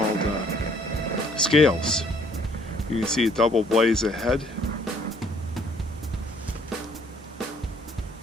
Scales. You can see a double blaze ahead.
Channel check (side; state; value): both; normal; correlation 0.61